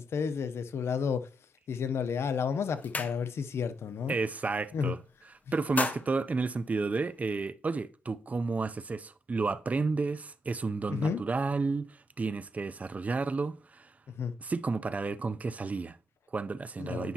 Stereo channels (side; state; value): both; normal; correlation 0.80